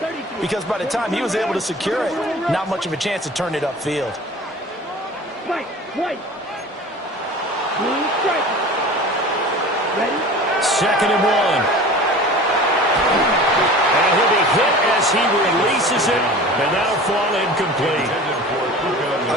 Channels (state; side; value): normal; both; correlation 0.39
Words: because by the time he was able to secure it, not much of a chance to turn it upfield. Right. Ready? 2nd and 1. And he'll be hit as he releases it, and that'll fall incomplete.